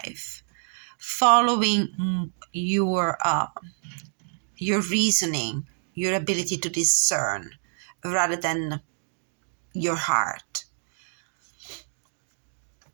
following your reasoning, your ability to discern, rather than your heart.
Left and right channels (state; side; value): silent; left; digital silence